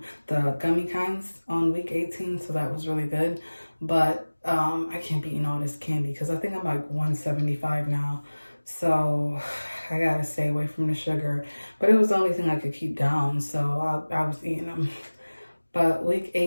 the gummy kinds on week 18, so that was really good. But I can't be eating all this candy because I think I'm like 175 now, so I gotta stay away from the sugar. But it was the only thing I could keep down, so I was eating them. But week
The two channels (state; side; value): inverted; both; correlation -1.00